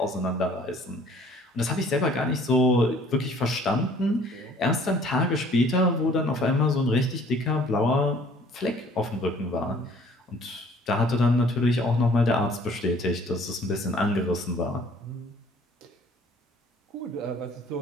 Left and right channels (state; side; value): normal; both; correlation 0.55